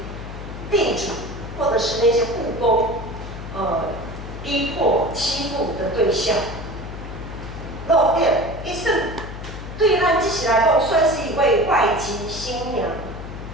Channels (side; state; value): left; noise; hum, 10 dB below the sound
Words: 地主或者是那些雇工，逼迫、欺负的对象。路点一生对咱这时来讲，算是一位外籍新娘，